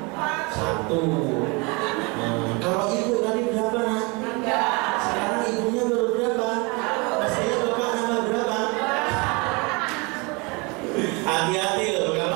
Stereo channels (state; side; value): quieter; left; 28.8 dB